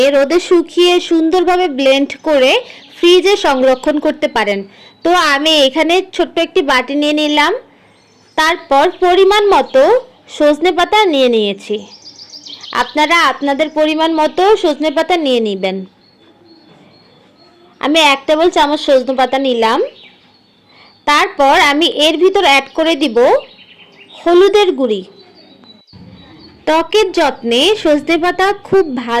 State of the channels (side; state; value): both; identical; correlation 1.00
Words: রোদে শুকিয়ে সুন্দরভাবে ব্লেন্ড করে ফ্রিজে সংরক্ষণ করতে পারেন। তো আমি এখানে ছোট্ট একটি বাটি নিয়ে নিলাম, তারপর পরিমাণ মতো সজনে পাতা নিয়ে নিয়েছি। আপনারা আপনাদের পরিমাণ মতো সজনে পাতা নিয়ে নেবেন। আমি 1 টেবিল চামচ সজনে পাতা নিলাম। তারপর আমি এর ভিতর অ্যাড করে দিব হলুদের গুঁড়ি। ত্বকের যত্নে সজনে পাতা খুব